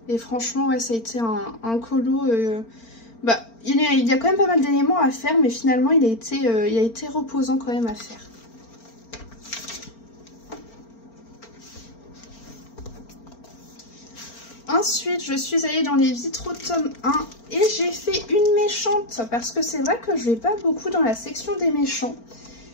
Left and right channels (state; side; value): late; right; 4.4 ms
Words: Et franchement, ouais, ça a été un colo... il y a quand même pas mal d'éléments à faire, mais finalement, il a été reposant quand même à faire. Ensuite, je suis allée dans les vitraux tome 1 et j'ai fait une méchante parce que c'est vrai que je vais pas beaucoup dans la section des méchants.